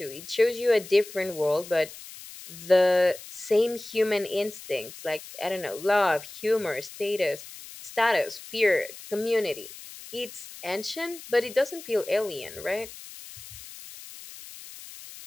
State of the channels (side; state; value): left; noise; hiss, 15 dB below the sound